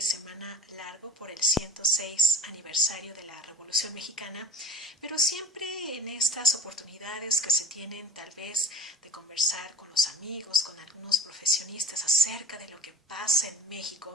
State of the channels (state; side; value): normal; both; correlation 0.41